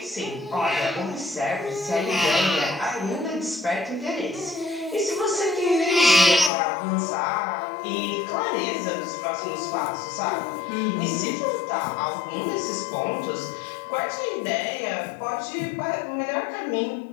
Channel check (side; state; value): right; drops out; at 6.5 s